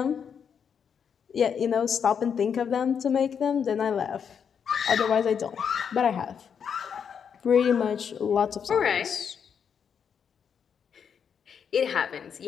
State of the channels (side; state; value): right; quieter; 7.2 dB